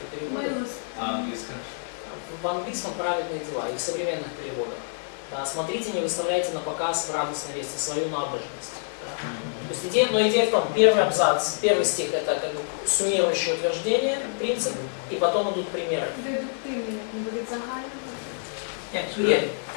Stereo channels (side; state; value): right; silent; digital silence